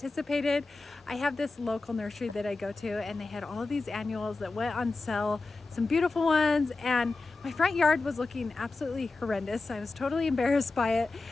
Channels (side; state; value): right; quieter; 3.6 dB